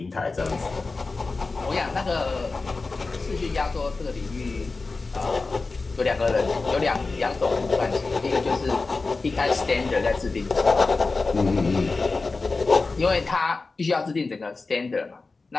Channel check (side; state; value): right; quieter; 3.8 dB